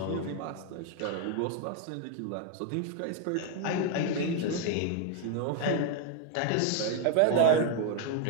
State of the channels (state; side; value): different; both; correlation 0.01